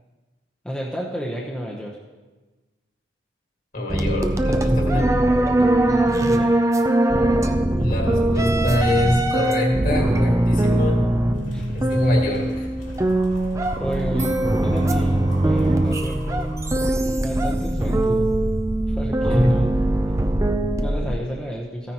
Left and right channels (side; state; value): both; normal; correlation 0.87